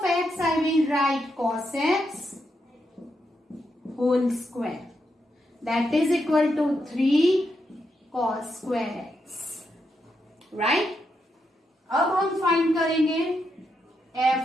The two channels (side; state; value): both; normal; correlation 0.82